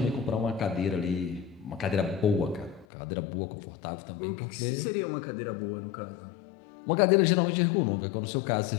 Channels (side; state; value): right; drops out; at 2.9 s